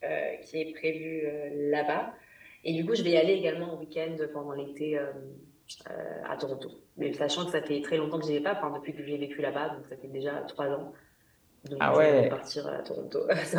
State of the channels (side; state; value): both; identical; correlation 1.00